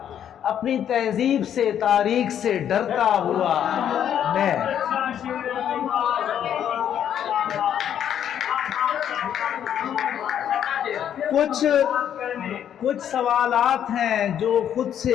اپنی تہذیب سے تاریخ سے ڈرتا ہوا میں. کچھ سوالات ہیں جو خود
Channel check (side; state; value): right; quieter; 9.6 dB